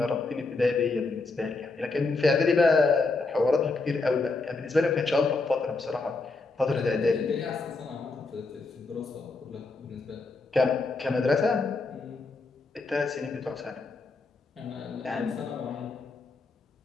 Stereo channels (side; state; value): right; quieter; 3.7 dB